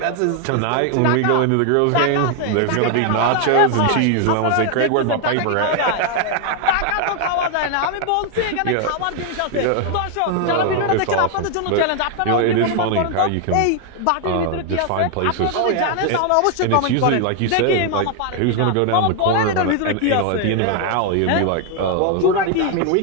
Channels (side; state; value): both; different; correlation 0.00